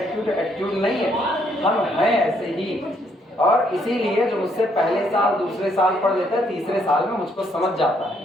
नहीं है, हम हैं ऐसे ही। और इसीलिए जो मुझसे पहले साल दूसरे साल पढ़ लेता है, तीसरे साल में मुझको समझ जाता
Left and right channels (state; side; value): normal; both; correlation 0.70